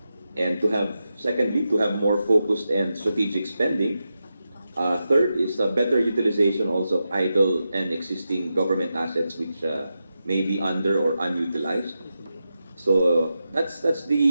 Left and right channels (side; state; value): both; inverted; correlation -0.89